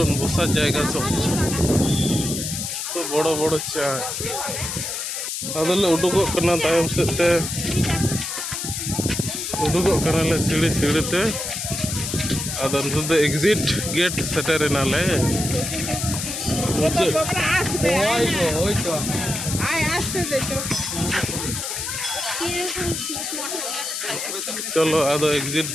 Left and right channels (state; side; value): noise; left; hiss, 4 dB below the sound